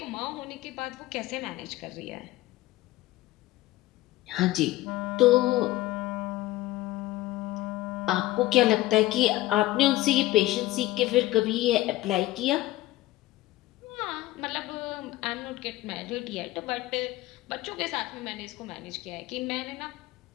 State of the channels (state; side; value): quieter; right; 17.3 dB